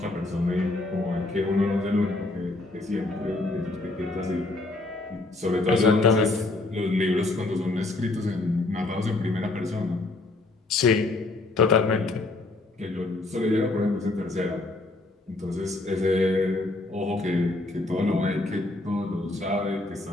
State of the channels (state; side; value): quieter; right; 3.0 dB